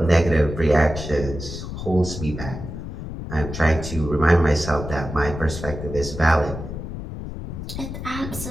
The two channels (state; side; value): noise; left; rumble, 8 dB below the sound